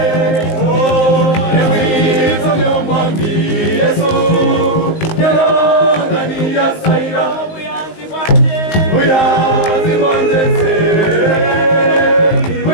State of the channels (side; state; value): right; late; 19 ms